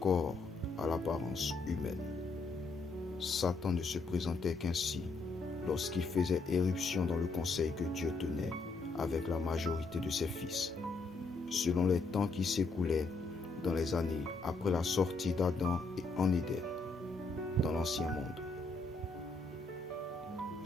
à l'apparence humaine. Satan ne se présentait qu'ainsi lorsqu'il faisait éruption dans le conseil que Dieu tenait avec la majorité de ses fils, selon les temps qui s'écoulaient dans les années après la sortie d'Adam et en Éden, dans l'ancien monde.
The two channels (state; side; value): quieter; right; 3.7 dB